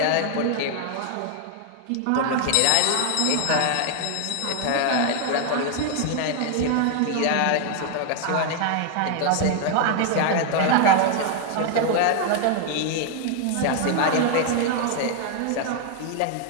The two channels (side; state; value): both; different; correlation 0.00